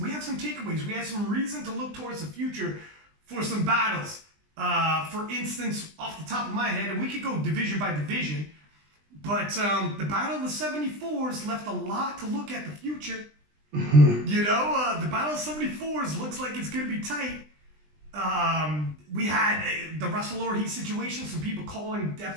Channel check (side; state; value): left; late; 20 ms